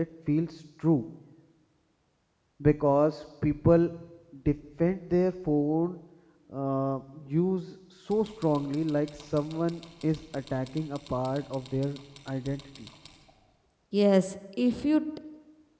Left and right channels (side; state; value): both; identical; correlation 1.00